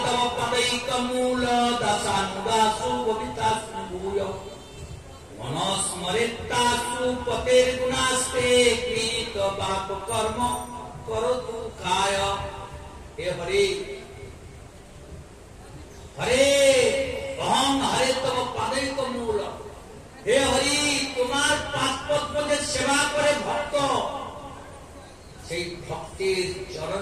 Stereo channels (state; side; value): identical; both; correlation 1.00